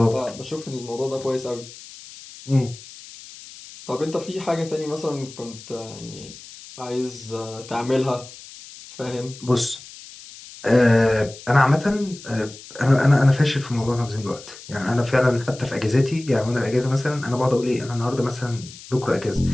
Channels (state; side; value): noise; left; hiss, 17 dB below the sound